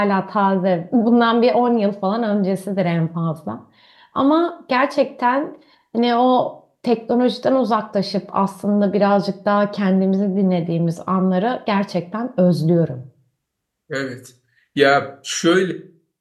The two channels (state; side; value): identical; both; correlation 1.00